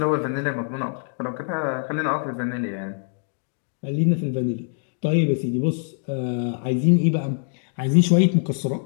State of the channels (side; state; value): right; silent; digital silence